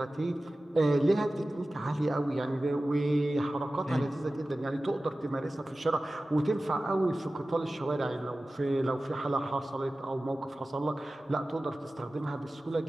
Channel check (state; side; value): normal; both; correlation 0.96